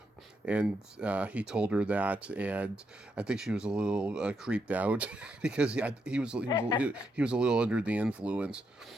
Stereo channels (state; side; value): normal; both; correlation 0.80